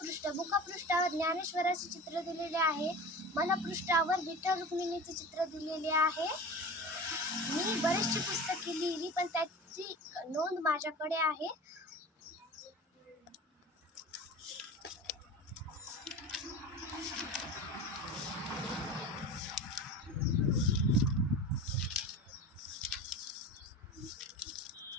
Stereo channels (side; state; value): both; normal; correlation 0.34